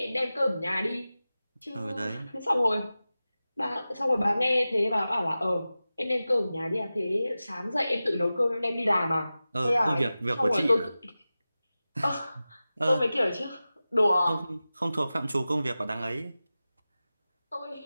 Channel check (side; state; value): both; inverted; correlation -0.95